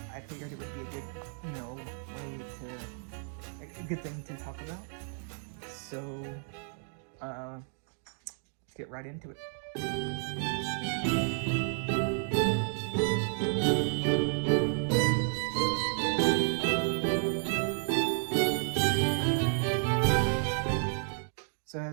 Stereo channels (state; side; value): silent; left; 57 dB below the other